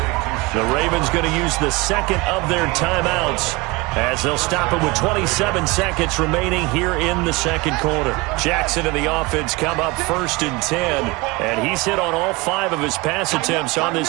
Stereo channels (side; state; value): left; quieter; 23.9 dB